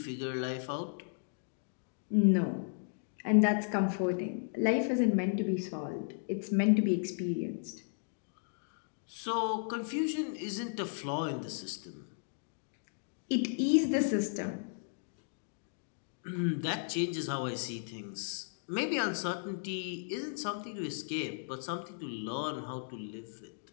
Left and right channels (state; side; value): silent; right; digital silence